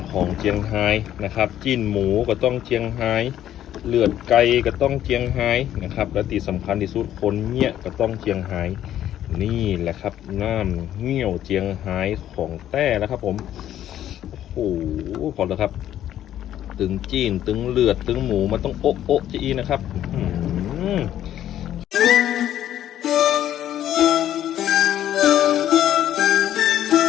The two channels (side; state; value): right; quieter; 11.6 dB